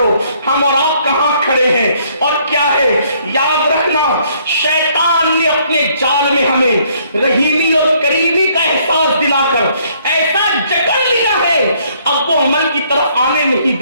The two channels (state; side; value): inverted; both; correlation -0.65